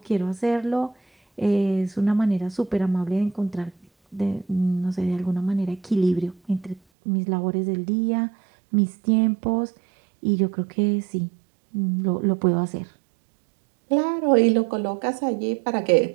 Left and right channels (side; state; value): left; drops out; at 6.8 s